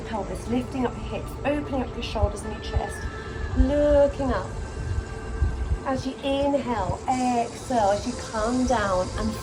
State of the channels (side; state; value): both; identical; correlation 1.00